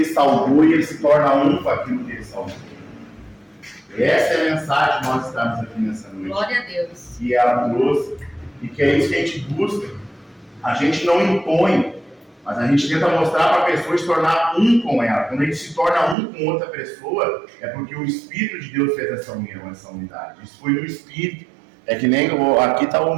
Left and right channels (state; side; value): drops out; left; at 16.2 s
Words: salgou e ele se torna um com aquilo que ele salgou. Essa é a mensagem que nós estamos aqui nessa noite. Glória a Deus. Que ela trouxe e que é isso que a gente busca. A gente não impõe, mas a gente tenta mostrar para a pessoa se tornar um com ela. Quando a gente se torna um com outra pessoa, é porque o Espírito de Deus fez essa união, essa unidade. Isso foi no Espírito. É que nem aqui está o